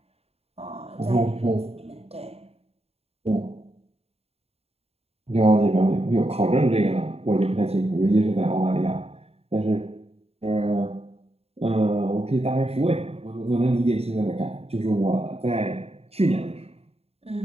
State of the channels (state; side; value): late; left; 0.29 ms